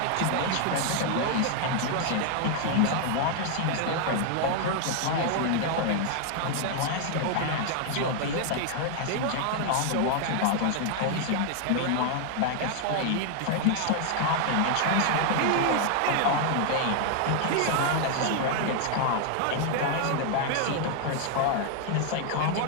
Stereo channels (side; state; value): both; different; correlation 0.00